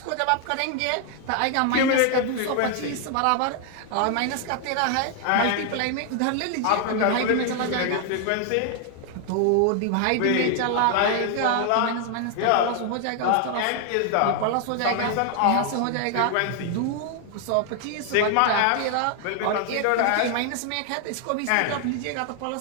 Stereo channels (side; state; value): both; different; correlation 0.00